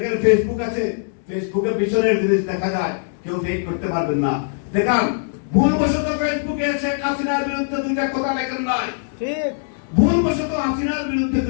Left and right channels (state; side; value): silent; right; digital silence